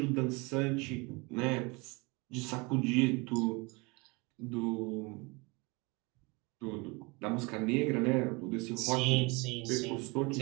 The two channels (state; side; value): quieter; left; 27.3 dB